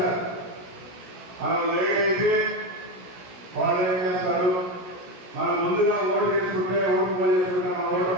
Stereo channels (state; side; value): late; left; 17 ms